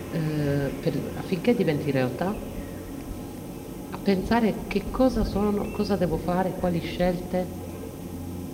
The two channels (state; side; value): identical; both; correlation 1.00